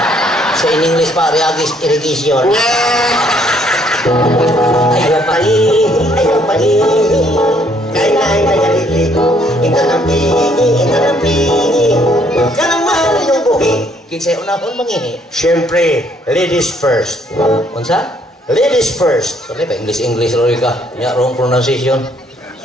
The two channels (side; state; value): both; normal; correlation 0.66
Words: Sa in English pa, Ariagis irrigation. ayaw pangihi. Kaya nagalili, inanampi. Kanang mahal yung buhi. Kinsay unahon mangihi. Siyempre, ladies first. Unsa? Ladies first. Sorry ba, English roy ka. Nya, wrong pronunciation.